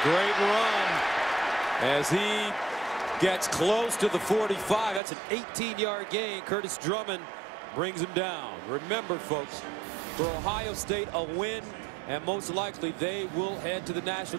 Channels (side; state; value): left; drops out; at 5.0 s